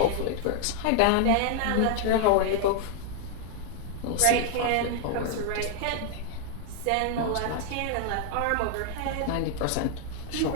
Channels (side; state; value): both; different; correlation 0.00